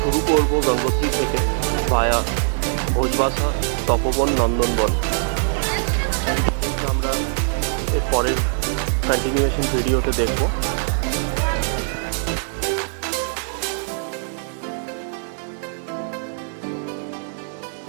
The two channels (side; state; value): left; silent; digital silence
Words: করব গঙ্গোত্রী থেকে ভায়া ভোজবাসা, তপবন, নন্দনবন। আমরা এর পরের কন্টিনিউয়েশন ভিডিওতে দেখব।